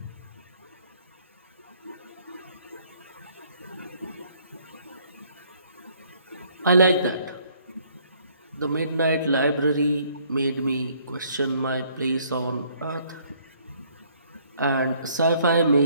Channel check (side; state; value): both; inverted; correlation -0.63